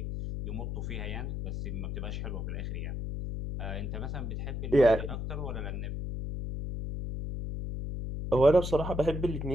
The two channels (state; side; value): noise; left; hum, 4 dB below the sound